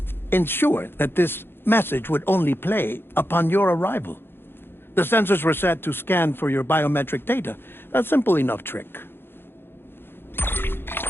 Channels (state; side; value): late; right; 0.10 ms